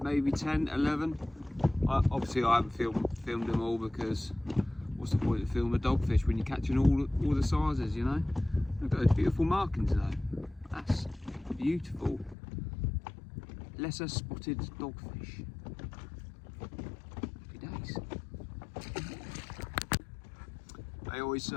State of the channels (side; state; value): right; drops out; at 12.4 s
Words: maybe 10, 11. Obviously I haven't filmed them all because what's the point of filming a dogfish when you're catching all the sizes, you know? Look at those beautiful markings though. That's beautiful. Lesser spotted dogfish. Happy days. They always